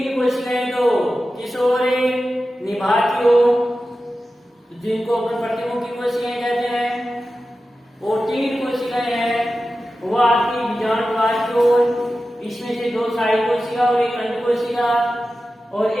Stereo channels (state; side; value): normal; both; correlation 0.93